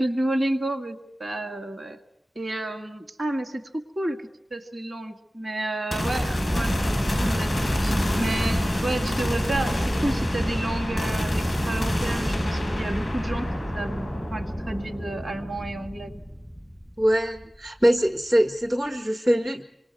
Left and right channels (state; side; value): normal; both; correlation 0.97